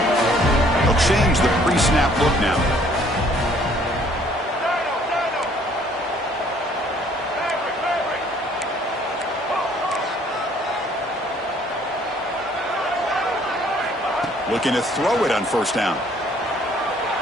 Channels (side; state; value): both; normal; correlation 0.60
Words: They'll change the pre-snap look now. Looking to throw it on first down.